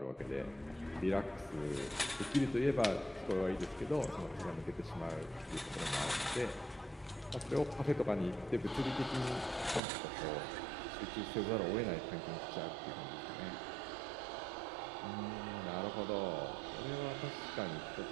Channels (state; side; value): drops out; left; at 9.8 s